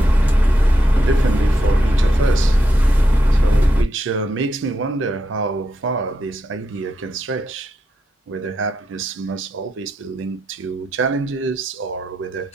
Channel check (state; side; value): normal; both; correlation 0.84